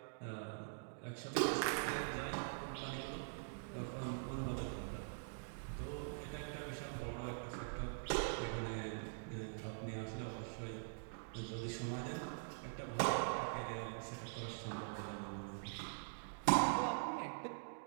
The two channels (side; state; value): left; silent; digital silence